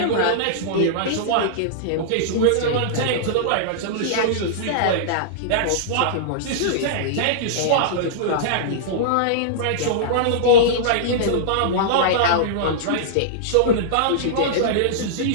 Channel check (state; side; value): different; both; correlation -0.02